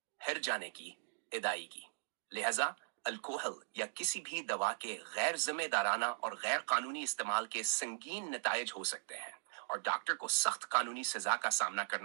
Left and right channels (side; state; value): left; silent; digital silence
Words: हर जाने की अदायगी, लिहाजा अल्कोहल या किसी भी दवा के गैर जिम्मेदाराना और गैर कानूनी इस्तेमाल के संगीन नतायज हो सकते हैं और डॉक्टर को सख्त कानूनी सजा का सामना